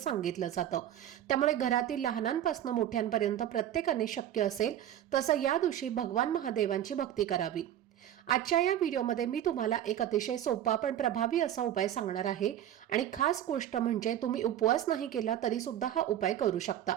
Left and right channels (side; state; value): left; quieter; 11.4 dB